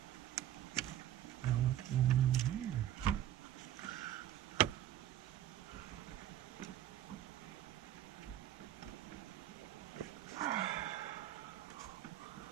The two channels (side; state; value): left; quieter; 11.9 dB